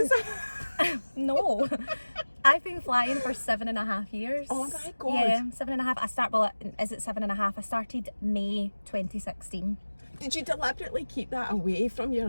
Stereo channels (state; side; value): inverted; both; correlation -1.00